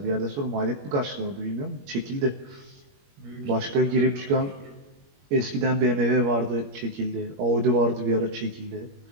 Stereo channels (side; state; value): left; late; 21 ms